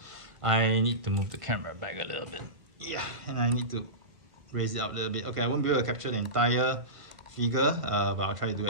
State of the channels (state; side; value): late; left; 1.9 ms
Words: I need to move the camera back a little bit. Yeah, and I need to raise it up a little bit. Okay, I won't be able to capture the entire figure, but I'll try to do